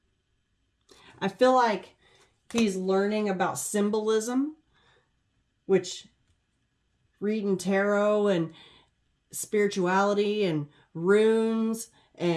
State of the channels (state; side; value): identical; both; correlation 1.00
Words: I feel like he's learning about symbolism, which reading tarot and spirituality and runes